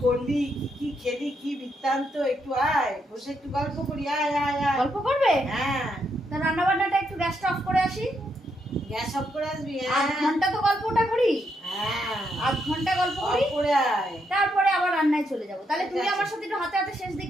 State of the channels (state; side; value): normal; both; correlation 0.78